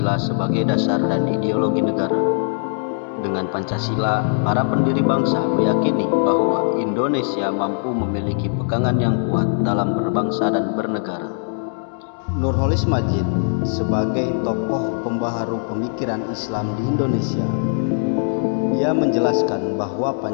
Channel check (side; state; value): right; silent; digital silence